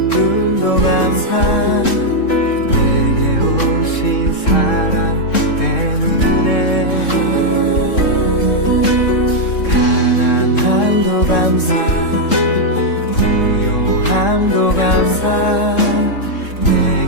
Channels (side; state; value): right; late; 3.7 ms